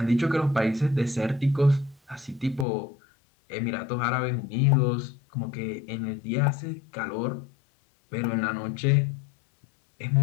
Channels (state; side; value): drops out; right; at 2.7 s